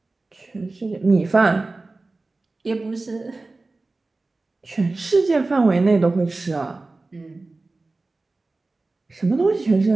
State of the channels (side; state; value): left; quieter; 3.3 dB